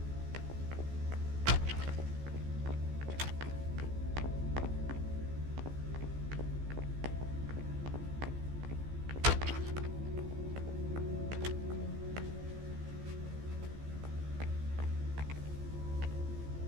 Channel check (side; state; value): left; late; 14 ms